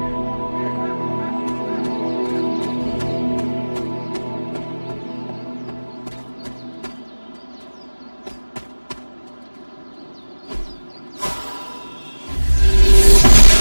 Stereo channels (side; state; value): both; inverted; correlation -1.00